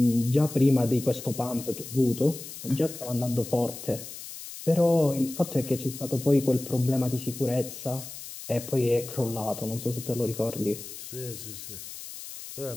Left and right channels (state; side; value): noise; left; hiss, 12 dB below the sound